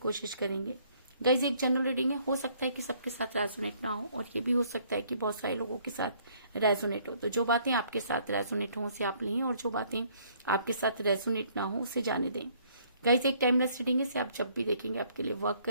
करेंगे। गाइज, एक जनरल रीडिंग है, हो सकता है कि सबके साथ रेजोनेट ना हो, और ये भी हो सकता है कि बहुत सारे लोगों के साथ रेजोनेट हो। तो जो बातें आपके साथ रेजोनेट हो उसे आप लें, और जो बातें आपके साथ रेजोनेट ना हो उसे जाने दें। गाइज, एक टाइमलेस रीडिंग है, इसे आप जब भी देखेंगे आपके लिए वर्क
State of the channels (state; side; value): inverted; both; correlation -0.63